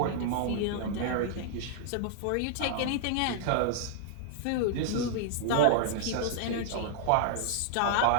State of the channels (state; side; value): different; both; correlation -0.01